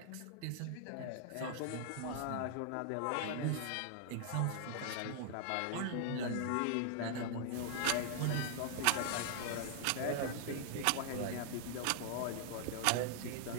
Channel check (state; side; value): different; both; correlation 0.00